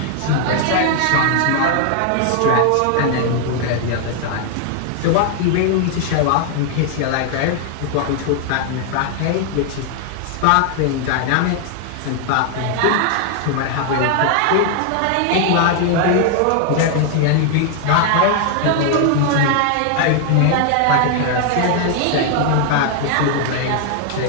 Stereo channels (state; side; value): different; both; correlation 0.00